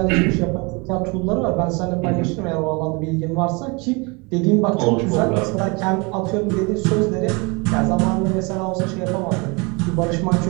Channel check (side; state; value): left; quieter; 28.7 dB